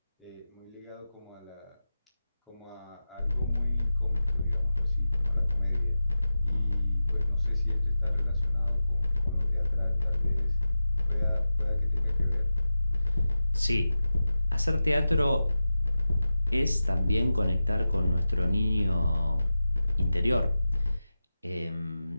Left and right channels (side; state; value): both; inverted; correlation -0.93